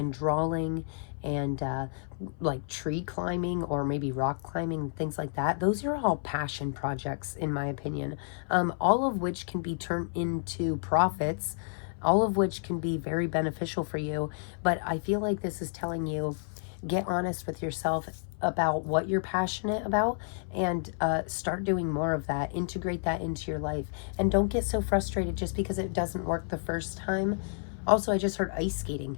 drawing and like tree climbing or maybe rock climbing, things like that, those are all passion projects in my opinion, all of which can be turned into profits, all of which can be very beneficial for you. But I feel like this is telling you, get honest with yourself about what you're passionate about and start doing more of that. Integrate that into your life. And don't get so frustrated just because it doesn't work the first time. Also, I just heard ice skating.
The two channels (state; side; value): silent; right; 58 dB below the other